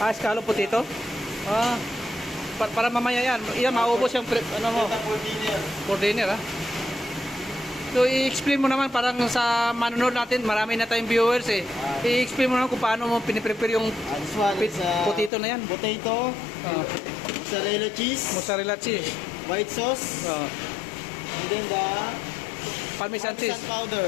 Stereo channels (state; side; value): drops out; right; at 15.3 s